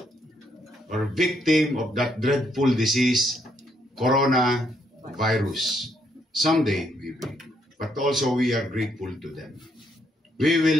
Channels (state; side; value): normal; both; correlation 0.73